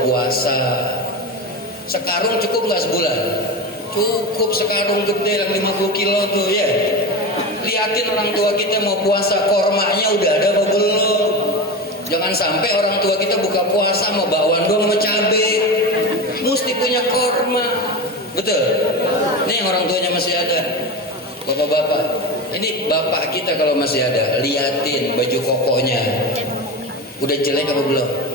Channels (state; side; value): normal; both; correlation 0.23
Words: puasa. Sekarung cukup nggak sebulan? Cukup sekarung gede yang 50 kilo tuh ya. Liatin orang tua kita mau puasa, kormanya udah ada apa belum. Jangan sampai orang tua kita buka puasa mau bakwan doang sama cabe. Mesti punya korma. Betul? Nih yang orang tuanya masih ada. Bapak-bapak, ini bapak kita kalau masih ada, liatin baju kokonya. Udah jelek apa belum?